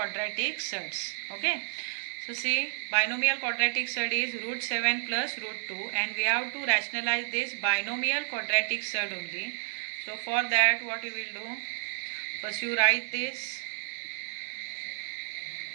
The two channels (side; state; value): left; silent; digital silence